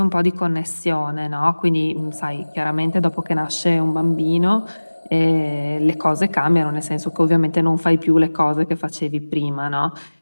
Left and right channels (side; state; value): both; inverted; correlation -1.00